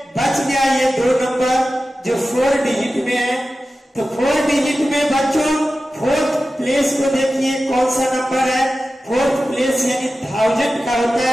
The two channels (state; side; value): normal; both; correlation 0.94